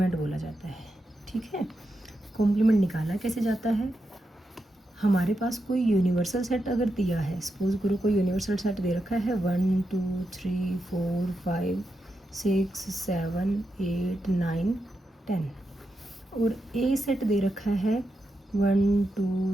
बोला जाता है। ठीक है, कॉम्प्लीमेंट निकाला कैसे जाता है? हमारे पास कोई यूनिवर्सल सेट अगर दिया है, सपोज करो कोई यूनिवर्सल सेट दे रखा है 1 2 3 4 5 6 7 8 9 10, और ए सेट दे रखा है 1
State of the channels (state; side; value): normal; both; correlation 0.87